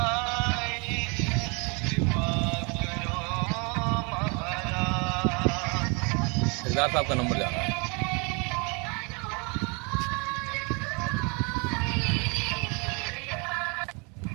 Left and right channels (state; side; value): quieter; left; 31.8 dB